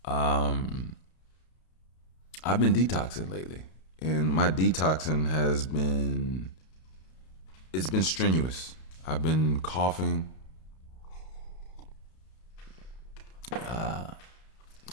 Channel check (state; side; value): late; right; 32 ms